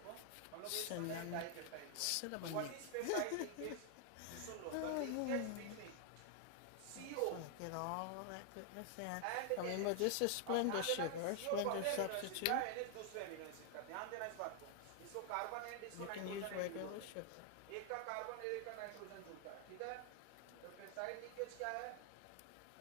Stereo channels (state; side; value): different; both; correlation 0.00